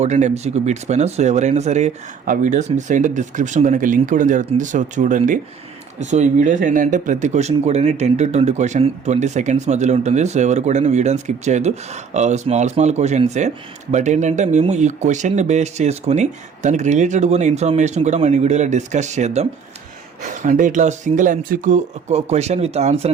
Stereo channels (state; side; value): quieter; left; 6.3 dB